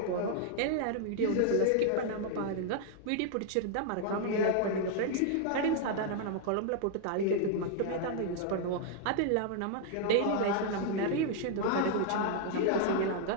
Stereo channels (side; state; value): both; different; correlation 0.00